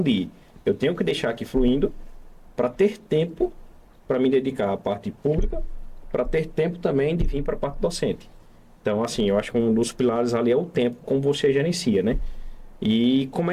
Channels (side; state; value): both; identical; correlation 1.00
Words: de eu tenho que deixar aqui fluindo para ter tempo para me dedicar à parte pública, para ter tempo também de vir para a parte docente. Então, assim, eu acho que um dos pilares ali é o tempo, como você gerencia, né? E